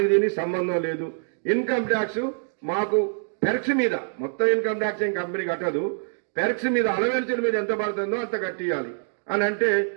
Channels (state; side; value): silent; left; digital silence